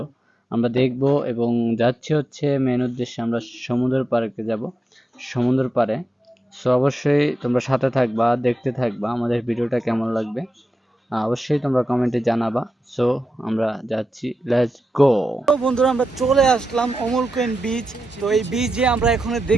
আমরা দেখব এবং যাচ্ছি হচ্ছে মেন উদ্দেশ্যে, আমরা সমুদ্র পাড়ে যাব, সমুদ্র পাড়ে। সো অবশ্যই তোমরা সাথে থাকবা, দেখতে থাকবা আমাদের ভিডিওটা কেমন লাগবে। অবশ্যই তোমরা কমেন্টে জানাবা। সো আমরা যাচ্ছি, লেটস গো। তো বন্ধুরা, আমরা চলে আসলাম অমর কুইন বিচ। তো এই বিচে আমরা এখানে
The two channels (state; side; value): normal; both; correlation 0.89